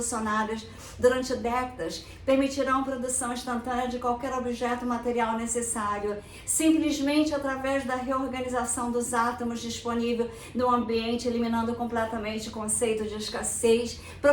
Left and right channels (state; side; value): identical; both; correlation 1.00